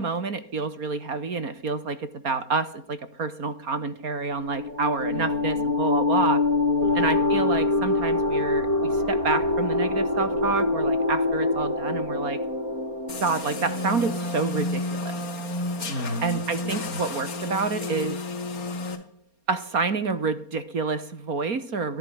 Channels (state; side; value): late; left; 4.3 ms